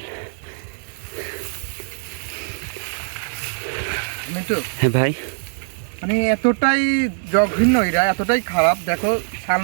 মিন্টু, হ্যাঁ ভাই, মানে এতটাই জঘন্য এরা, এতটাই খারাপ। দেখো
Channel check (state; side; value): silent; left; digital silence